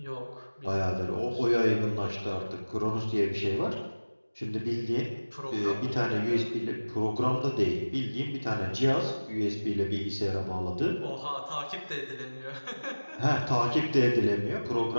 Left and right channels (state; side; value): inverted; both; correlation -1.00